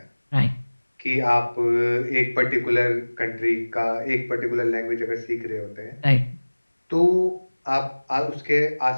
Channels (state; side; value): inverted; both; correlation -1.00